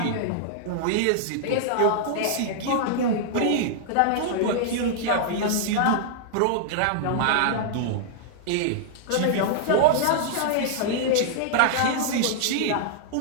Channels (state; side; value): different; both; correlation -0.01